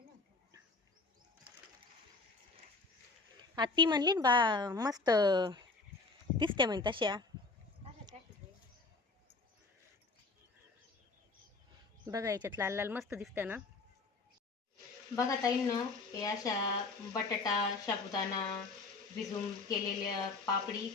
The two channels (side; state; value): right; quieter; 3.8 dB